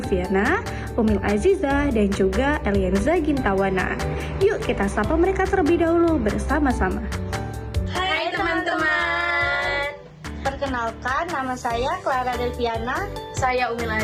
Umil Aziza, dan juga Elianza Gintawana. Yuk kita sapa mereka terlebih dahulu bersama-sama. Hai teman-teman. Perkenalkan, nama saya Clara Delviana. Saya Umil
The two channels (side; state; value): both; identical; correlation 1.00